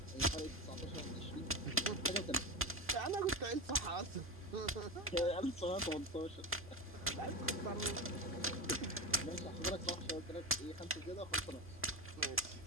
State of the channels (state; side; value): normal; both; correlation 0.20